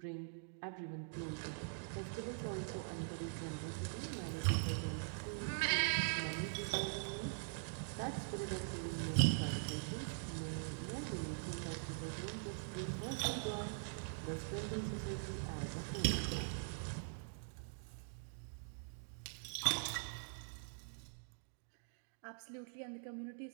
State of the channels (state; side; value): silent; left; digital silence